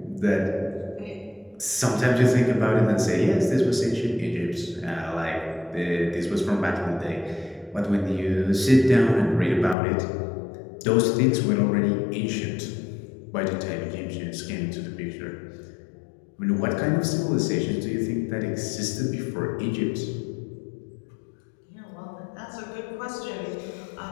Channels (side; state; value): right; drops out; at 9.8 s